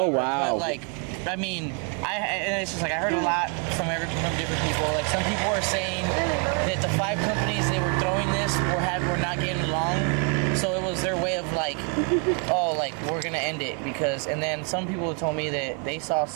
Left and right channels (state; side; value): quieter; left; 36.6 dB